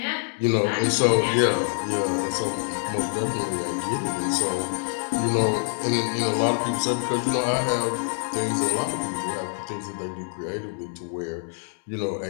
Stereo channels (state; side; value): silent; right; 61 dB below the other